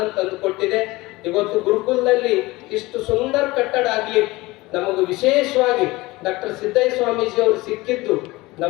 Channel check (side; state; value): right; quieter; 20.8 dB